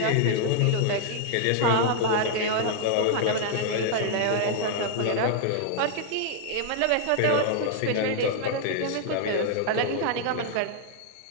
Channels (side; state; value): both; different; correlation 0.00